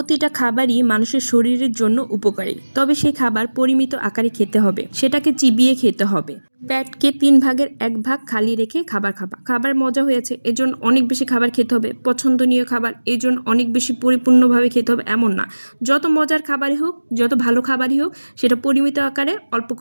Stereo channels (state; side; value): inverted; both; correlation -1.00